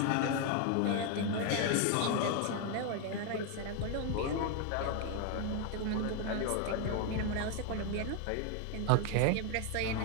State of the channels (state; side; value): different; both; correlation 0.01